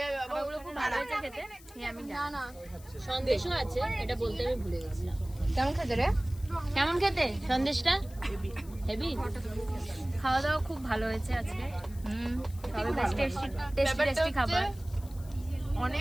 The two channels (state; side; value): noise; left; hiss, 22 dB below the sound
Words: যাবে বাবা। ওগুলো খুব ভালো হয়েছে খেতে। আমি না না, সন্দেশও আছে, এটা বলতে আমি ভুলে গেছিলাম। কেমন খেতে রে? কেমন খেতে সন্দেশটা? হেভি। খাওয়া দাওয়া খুব ভালো হয়েছে আজকে। তবে বেশ টেস্টি খাবার,